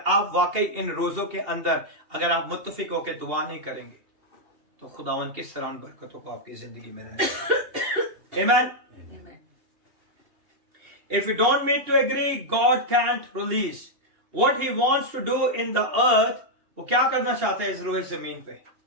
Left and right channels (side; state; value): left; late; 2.8 ms